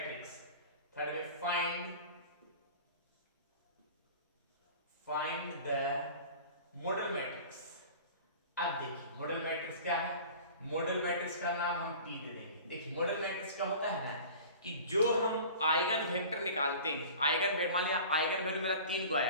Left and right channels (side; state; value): both; inverted; correlation -0.41